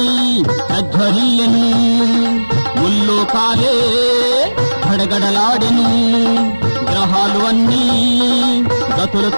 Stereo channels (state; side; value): inverted; both; correlation -1.00